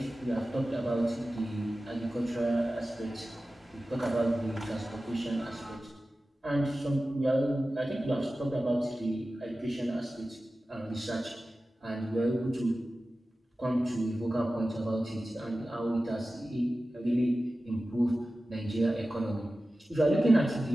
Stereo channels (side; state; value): both; normal; correlation 0.95